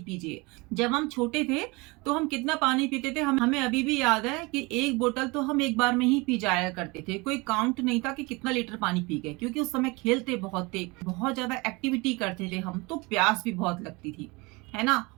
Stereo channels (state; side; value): quieter; left; 25.6 dB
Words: पीजिए। जब हम छोटे थे तो हम कितना पानी पीते थे, हमें अभी भी याद है कि एक बोतल तो हम एक बार में ही पी जाया करते थे। कोई काउंट नहीं था कि कितना लीटर पानी पी गए, क्योंकि उस समय खेलते बहुत थे, बहुत ज्यादा एक्टिविटी करते थे हम, तो प्यास भी बहुत लगती थी, है ना?